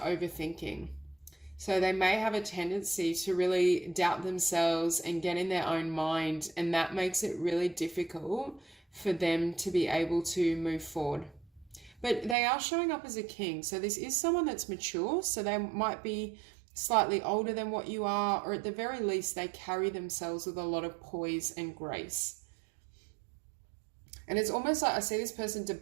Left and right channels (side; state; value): left; drops out; at 12.4 s